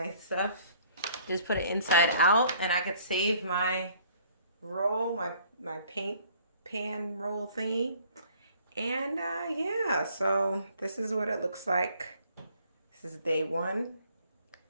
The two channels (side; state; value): both; inverted; correlation -0.58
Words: stuff, just put it inside out, and I could save my roll, my paint pan roll thingy. And yeah, so this is what it looks like. This is day 1.